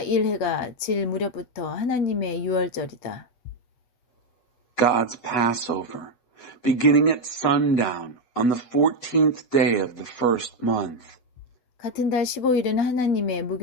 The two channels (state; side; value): late; right; 8.2 ms